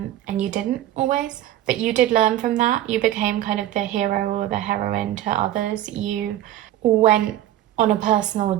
you didn't always. But you did learn from that. You became kind of the hero or the heroine to others. You went on a personal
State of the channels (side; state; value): left; quieter; 13.3 dB